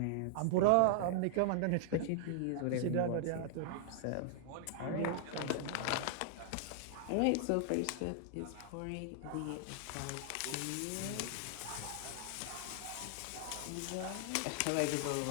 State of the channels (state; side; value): different; both; correlation -0.01